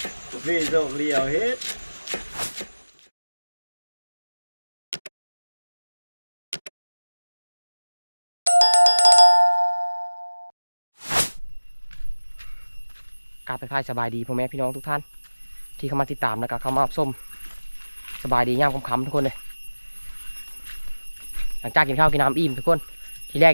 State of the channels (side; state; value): both; inverted; correlation -1.00